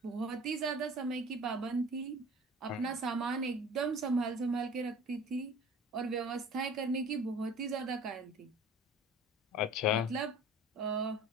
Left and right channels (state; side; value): normal; both; correlation 0.44